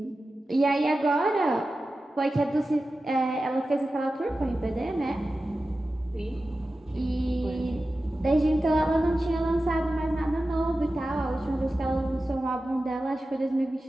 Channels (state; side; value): normal; both; correlation 0.94